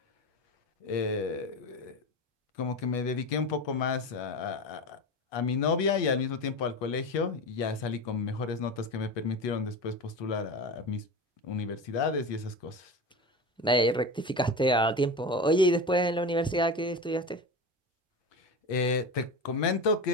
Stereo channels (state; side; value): normal; both; correlation 0.26